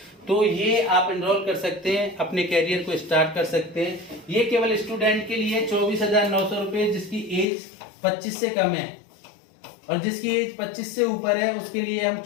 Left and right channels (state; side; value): drops out; right; at 7.5 s